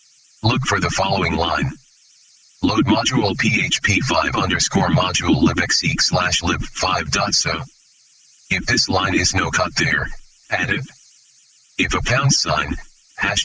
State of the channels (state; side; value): identical; both; correlation 1.00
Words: Look for the following line. Load module php5_module libxeq/lib5.so. If this line is no there, add it. If a £,